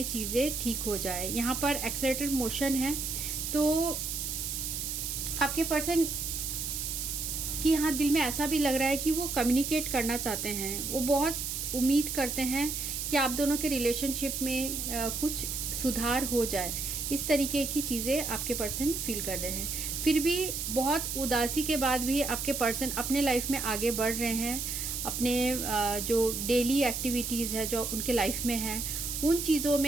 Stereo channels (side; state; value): right; noise; hiss, 3 dB below the sound